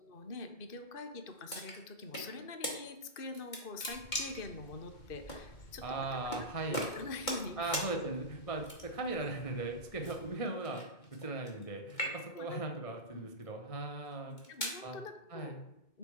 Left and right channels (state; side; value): late; right; 2.2 ms